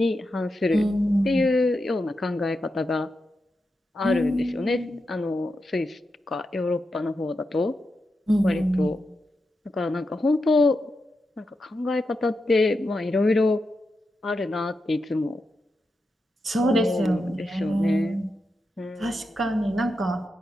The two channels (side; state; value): both; normal; correlation 0.88